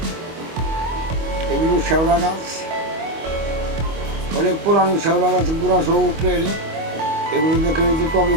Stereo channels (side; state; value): left; late; 25 ms